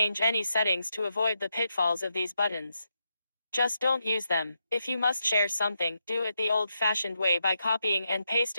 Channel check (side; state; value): both; inverted; correlation -0.84